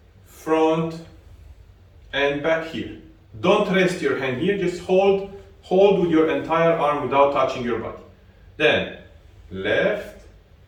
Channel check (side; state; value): both; identical; correlation 1.00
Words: front, and back here. Don't rest your hand here, just hold with your entire arm without touching your body. Then left,